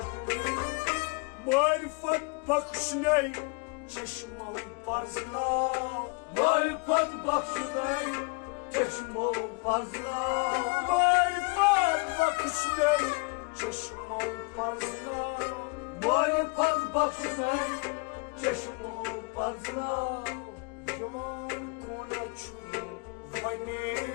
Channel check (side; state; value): right; quieter; 30.3 dB